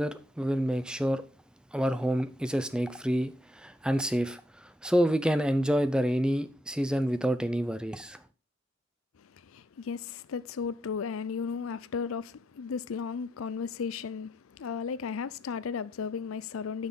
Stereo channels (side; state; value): both; normal; correlation 0.78